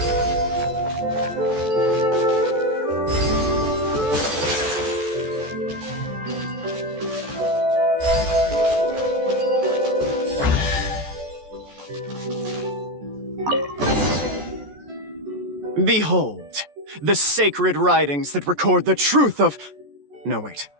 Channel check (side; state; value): left; late; 14 ms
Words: Behold, the sacred writings that record the truth of...